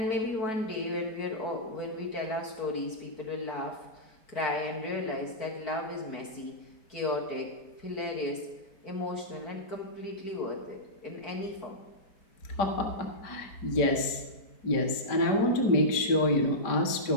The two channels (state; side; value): late; right; 5.1 ms